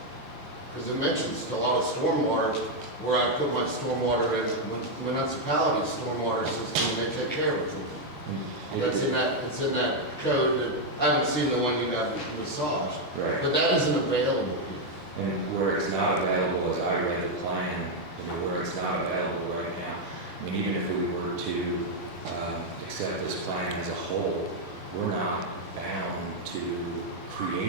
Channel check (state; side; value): normal; both; correlation 0.01